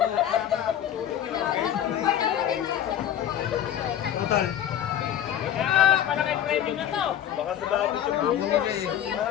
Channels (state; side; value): quieter; right; 10.6 dB